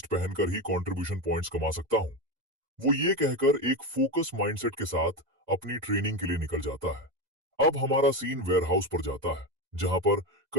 पहनकर ही कंट्रीब्यूशन पॉइंट्स कमा सकता हूं। वो ये कहकर एक फोकस माइंडसेट के साथ अपनी ट्रेनिंग के लिए निकल जाता है। अब हमारा सीन वेयरहाउस पर जाता है, जहां पर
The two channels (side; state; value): left; late; 2.0 ms